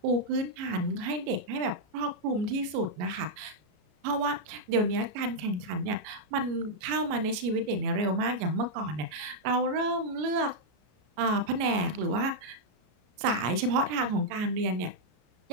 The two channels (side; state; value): left; late; 33 ms